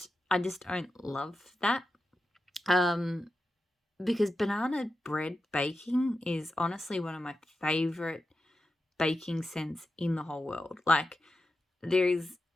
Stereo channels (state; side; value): normal; both; correlation 0.90